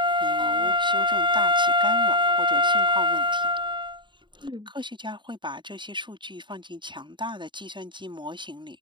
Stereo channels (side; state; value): left; late; 0.23 ms